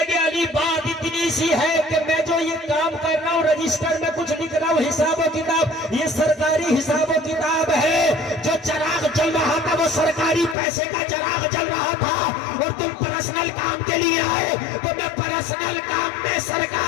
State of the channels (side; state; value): right; drops out; at 10.6 s